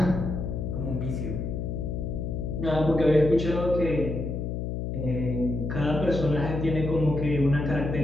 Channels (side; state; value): left; noise; hum, 3 dB below the sound